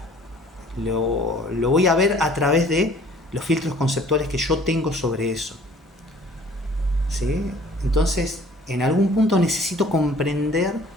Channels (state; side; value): normal; both; correlation 0.53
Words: lo voy a ver a través de los filtros conceptuales que yo tengo sobre eso, ¿sí? Entonces, en algún punto necesito comprender